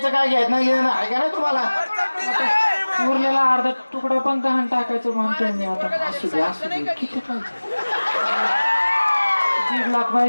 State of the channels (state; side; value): inverted; both; correlation -1.00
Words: काय घ्यायचं नाही घेणं आहे का नाही तुम्हाला? उरलेला अर्धा तुकडा पण गहाण टाकायचं म्हणतोय मी आता. असू दे, किती पाहिजे? 1.5 लाख